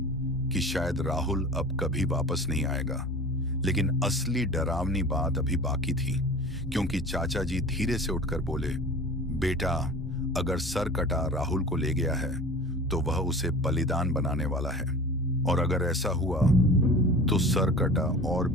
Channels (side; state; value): both; normal; correlation 0.38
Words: कि शायद राहुल अब कभी वापस नहीं आएगा। लेकिन असली डरावनी बात अभी बाकी थी, क्योंकि चाचा जी धीरे से उठकर बोले, बेटा, अगर सरकटा राहुल को ले गया है तो वह उसे बलिदान बनाने वाला है, और अगर ऐसा हुआ तो सरकटा और